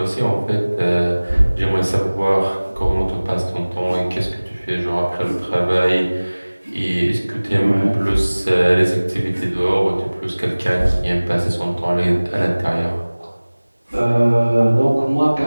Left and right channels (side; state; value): both; inverted; correlation -1.00